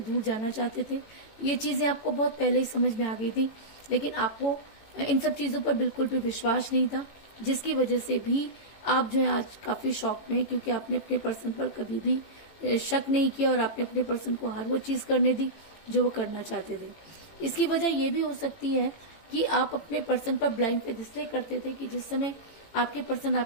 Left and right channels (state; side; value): late; right; 18 ms